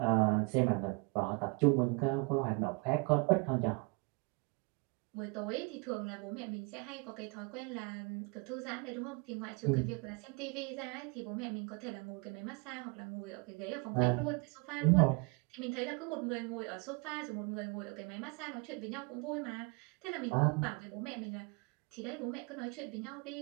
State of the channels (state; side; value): quieter; left; 30.5 dB